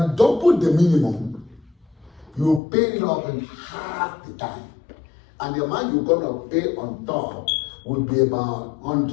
double the minimum, you pay it off in half the time. And the amount you're going to pay on top will be about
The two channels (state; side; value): drops out; right; at 2.6 s